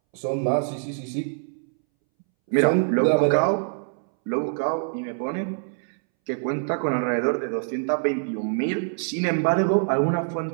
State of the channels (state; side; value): silent; left; 62 dB below the other